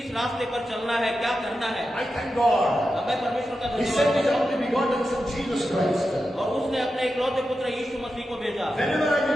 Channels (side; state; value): both; normal; correlation 0.90